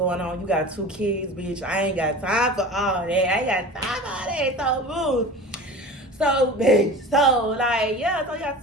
on. You got 2 kids, bitch. I ain't got time for all that. I ain't got time for all that. So move. So, bitch. So, like, yeah, so you got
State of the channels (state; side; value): normal; both; correlation 0.36